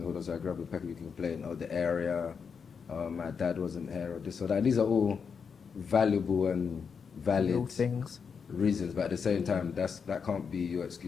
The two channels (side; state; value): right; quieter; 6.2 dB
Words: hood, so I grew up in Peckham, you complain, oh, the area, my dad wasn't here, or this or that. And these are all valuable and valid things, reasons, but at the same time, that can't be your